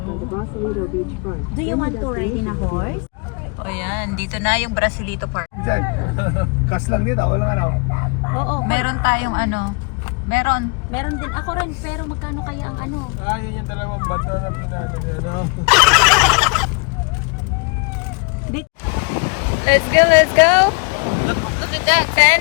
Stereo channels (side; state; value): right; quieter; 32.9 dB